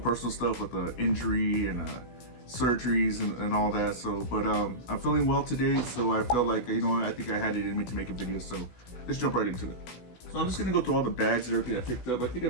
stuff with the injury and surgeries and all that. So, but I'm feeling well today, so I felt like, you know what, I think I had it in me to make a video. So let's jump right into it. So I'm just gonna go through all the bags and everything I picked up. I think I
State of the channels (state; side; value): late; right; 16 ms